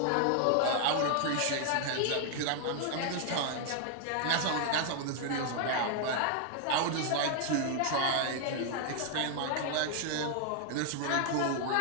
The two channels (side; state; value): both; different; correlation 0.00